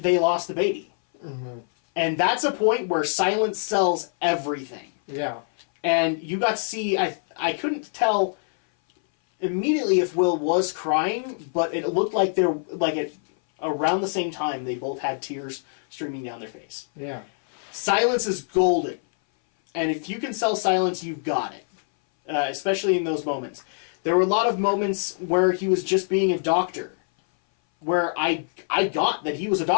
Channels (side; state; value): right; silent; 59 dB below the other